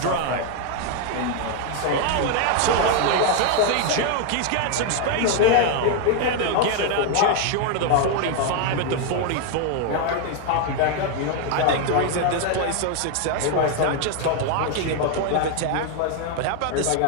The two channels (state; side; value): different; both; correlation 0.01